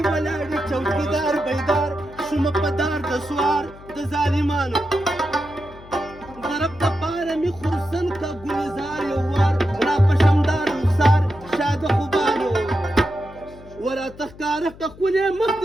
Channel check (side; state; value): left; noise; hum, 19 dB below the sound